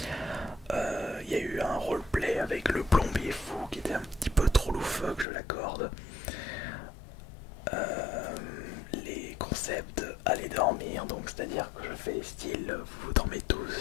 Il y a eu un roleplay avec le plombier fou qui était un petit peu trop loufoque, je l'accorde. Les concepts aller dormir, donc c'est à dire que je fais style vous dormez tous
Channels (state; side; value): drops out; right; at 5.2 s